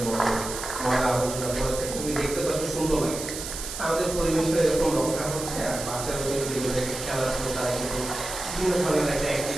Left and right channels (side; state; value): right; noise; hiss, 7 dB below the sound